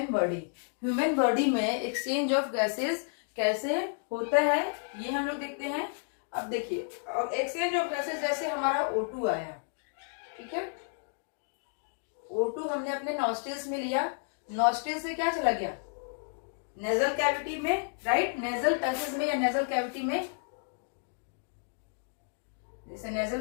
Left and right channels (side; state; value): right; silent; 55 dB below the other